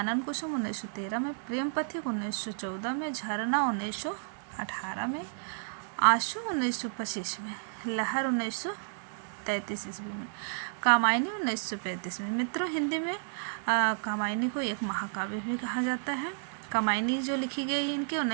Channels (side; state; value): left; silent; digital silence